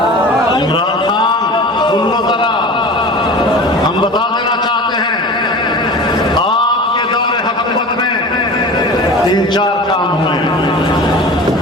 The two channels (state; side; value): normal; both; correlation 0.36